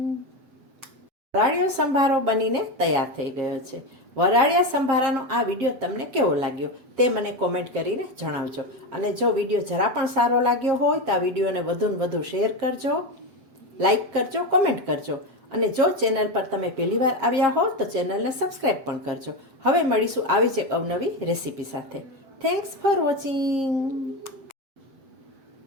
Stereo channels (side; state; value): left; late; 7.5 ms